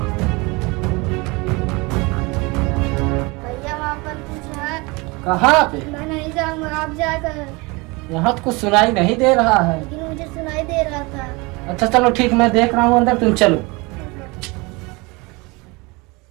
भैया वहाँ पर कुछ है। कहाँ पे? मैं नहीं जाऊंगा, आप जाकर। यहाँ तो कुछ सुनाई नहीं दे रहा है। लेकिन मुझे सुनाई दे रहा था। अच्छा चलो ठीक, मैं देख रहा हूँ अंदर, तुम चलो।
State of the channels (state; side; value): quieter; left; 25.8 dB